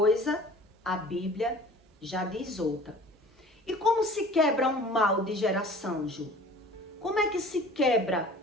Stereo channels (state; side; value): normal; both; correlation 0.45